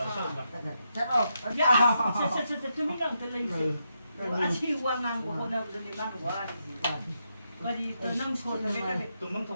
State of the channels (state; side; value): inverted; both; correlation -0.83